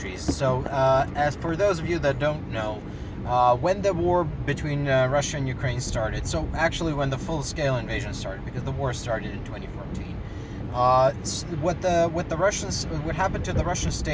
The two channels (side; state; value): both; identical; correlation 1.00